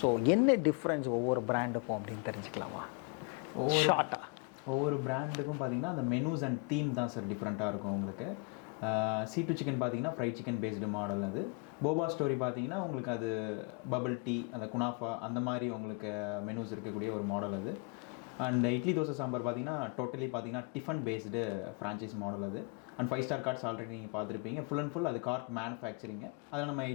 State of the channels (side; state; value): right; quieter; 33.7 dB